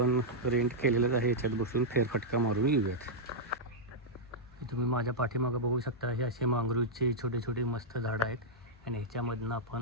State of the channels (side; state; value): both; normal; correlation -0.06